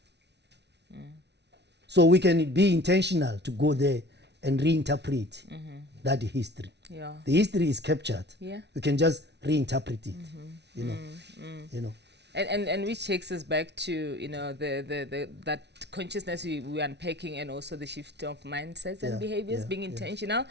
So we can be intentional to go there and reinterpret that history. The history is captured. We can just reinterpret it, you know. You know. And which takes us back to, you know, that consciousness we're unpacking, and also the shift of mindsets and behaviors, being intentional.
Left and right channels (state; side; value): late; left; 0.50 ms